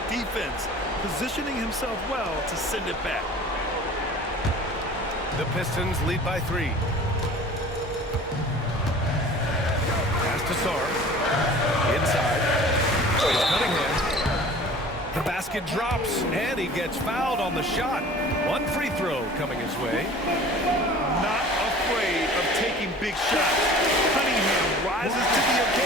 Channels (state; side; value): normal; both; correlation 0.44